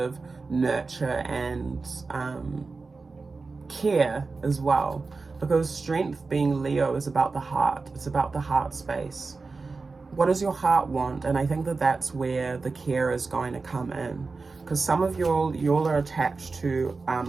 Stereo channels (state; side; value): quieter; left; 4.1 dB